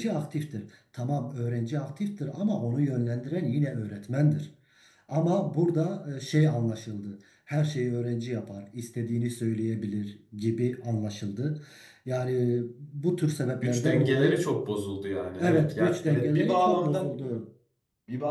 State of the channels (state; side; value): identical; both; correlation 1.00